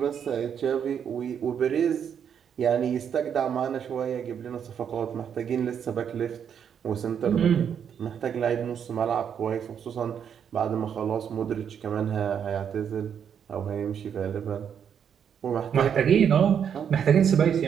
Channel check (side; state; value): left; quieter; 8.1 dB